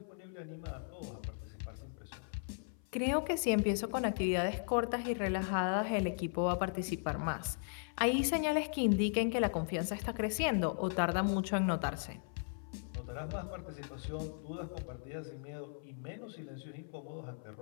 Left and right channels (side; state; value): right; silent; 53 dB below the other